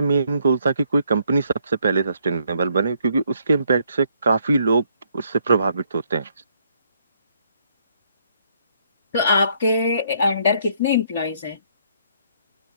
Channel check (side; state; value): both; inverted; correlation -0.70